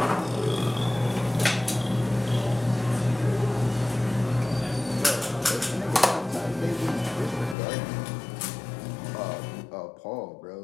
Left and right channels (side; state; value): right; drops out; at 7.6 s